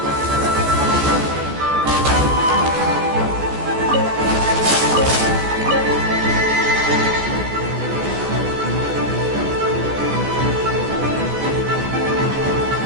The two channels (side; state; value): left; late; 14 ms